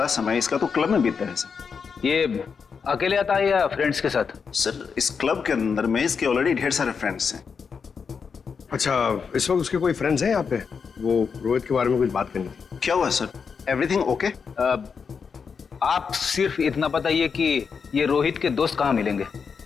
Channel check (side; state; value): right; quieter; 5.9 dB